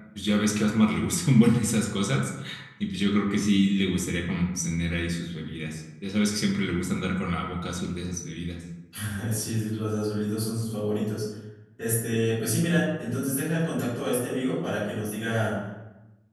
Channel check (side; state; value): both; identical; correlation 1.00